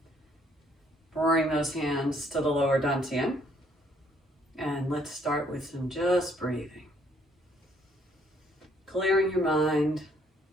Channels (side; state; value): both; normal; correlation 0.66